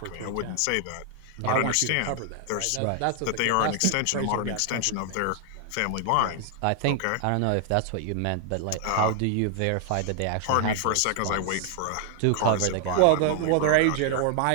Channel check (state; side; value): different; both; correlation 0.00